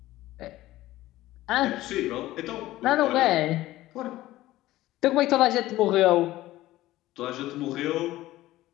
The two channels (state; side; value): quieter; right; 16.2 dB